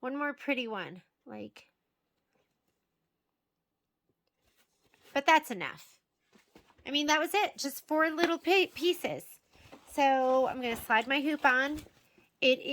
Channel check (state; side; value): identical; both; correlation 1.00